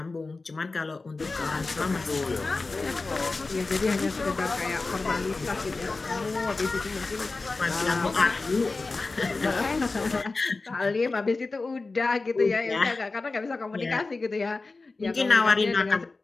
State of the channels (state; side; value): quieter; right; 3.7 dB